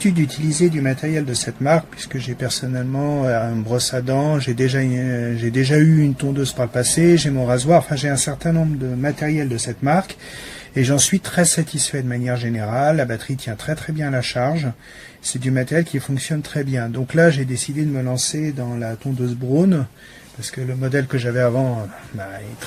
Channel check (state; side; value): identical; both; correlation 1.00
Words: d'utiliser du matériel de cette marque puisque j'ai personnellement une brosse à dents, j'ai déjà eu une tondeuse par le passé, j'ai mon rasoir, enfin j'ai un certain nombre de matériel de cette marque et j'en suis très satisfait de manière générale. La batterie tient très très bien à la charge. C'est du matériel qui fonctionne très bien. Donc là, j'ai décidé de me lancer dans la tondeuse Braun, parce que le modèle que j'avais avant est